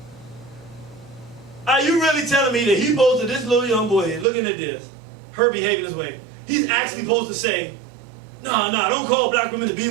Are you really telling me that he posted this little young boy looking at this, her behaving this way? He's actually supposed to say, no, don't call black women the B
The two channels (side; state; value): left; drops out; at 4.2 s